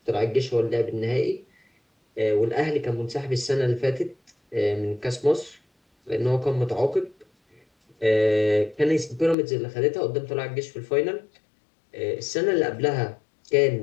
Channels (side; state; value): right; drops out; at 9.3 s